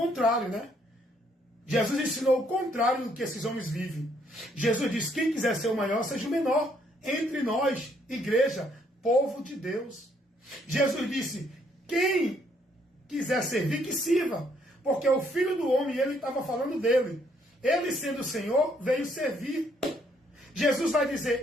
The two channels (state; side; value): normal; both; correlation 0.69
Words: né? Jesus ensinou o contrário do que esses homens vivem. Jesus disse: quem quiser ser o maior, seja o menor entre nós, igreja, povo de Deus. Jesus disse: quem quiser servir, que sirva. Porque o Filho do Homem, ele estava falando dele. Ele, sendo o Senhor, veio servir. Jesus vai